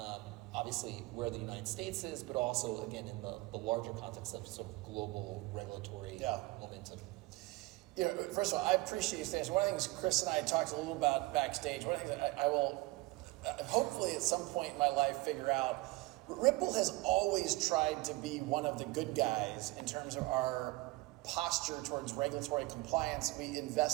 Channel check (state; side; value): quieter; left; 22.0 dB